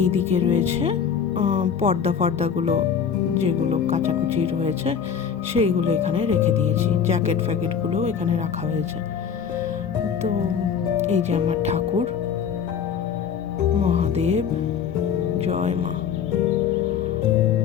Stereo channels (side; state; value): right; quieter; 7.4 dB